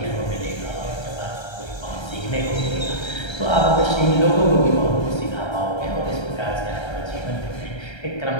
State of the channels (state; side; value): late; right; 1.3 ms